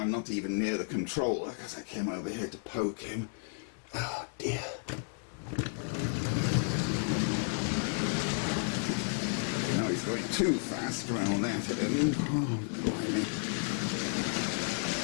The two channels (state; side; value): silent; right; 56 dB below the other